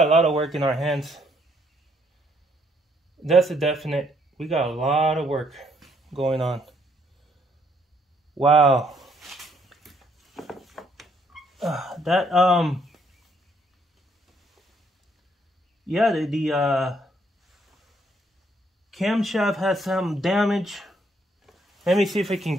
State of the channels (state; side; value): normal; both; correlation 0.69